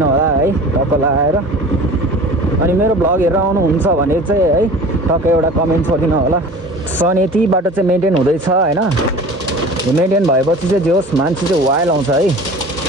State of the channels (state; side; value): normal; both; correlation 0.40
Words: होला है टक्क लगाएर। अनि मेरो भ्लग हेरेर आउनुहुन्छ भने चाहिँ है टक्क एउटा कमेन्ट छोडिदिनु होला। सो अनि यति बाटो चाहिँ मेन्टेन हुँदैछ होइन। यो मेन्टेन भएपछि चाहिँ जोस् मान्छे चाहिँ वाइल्ड आउँछ है।